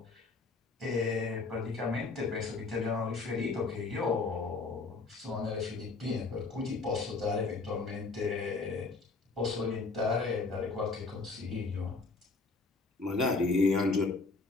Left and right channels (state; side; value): quieter; right; 3.9 dB